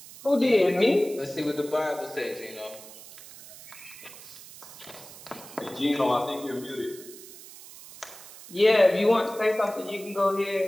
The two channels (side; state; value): right; noise; hiss, 17 dB below the sound